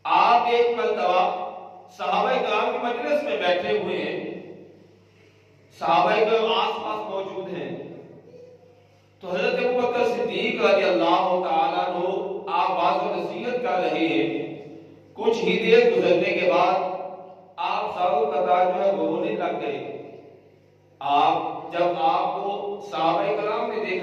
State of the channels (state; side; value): identical; both; correlation 1.00